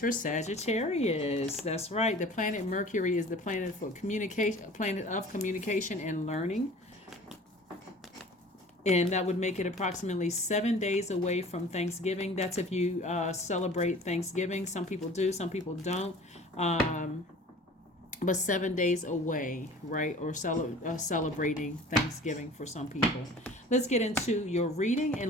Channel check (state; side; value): normal; both; correlation 0.44